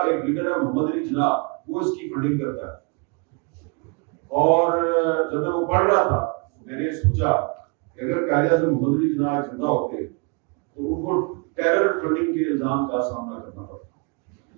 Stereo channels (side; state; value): left; quieter; 33.7 dB